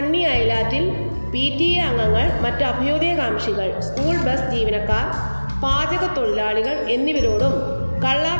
Ayalattil, PTA അംഗങ്ങൾ, മറ്റ് അഭ്യുദയകാംക്ഷികൾ, സ്കൂൾ ബസ് ജീവനക്കാർ, പാചക തൊഴിലാളികൾ എന്നിവരോടും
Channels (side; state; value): both; inverted; correlation -1.00